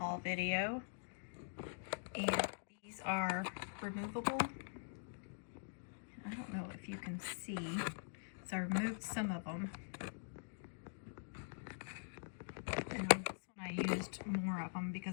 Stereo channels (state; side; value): silent; right; digital silence